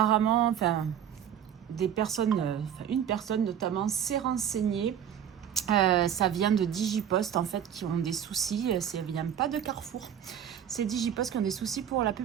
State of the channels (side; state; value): left; quieter; 9.3 dB